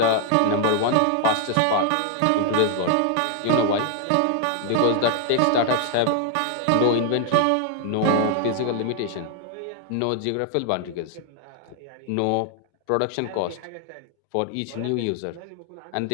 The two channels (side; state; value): both; different; correlation 0.00